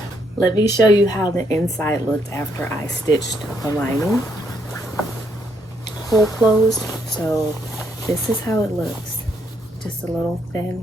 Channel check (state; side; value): normal; both; correlation 0.73